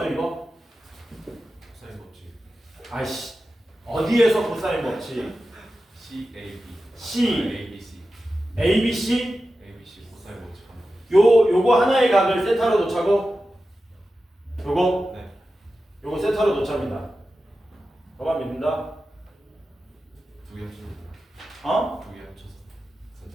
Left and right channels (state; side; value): normal; both; correlation 0.93